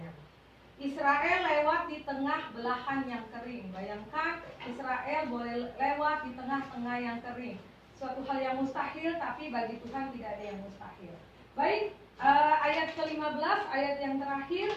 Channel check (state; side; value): identical; both; correlation 1.00